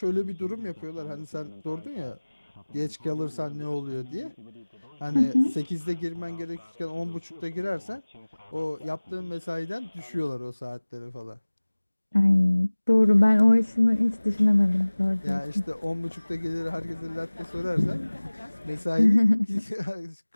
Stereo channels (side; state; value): both; inverted; correlation -1.00